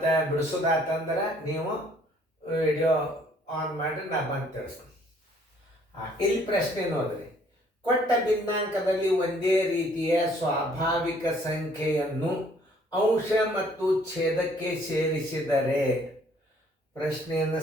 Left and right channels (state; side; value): normal; both; correlation 0.61